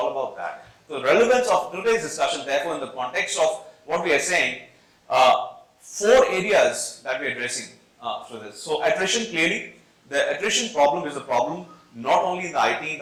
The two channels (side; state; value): both; identical; correlation 1.00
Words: about that. So the relevance of today's discussion, therefore, in the context of what we are saying, 4 areas that we are addressing for this. So attrition, clearly, the attrition problem is a problem not only in the IT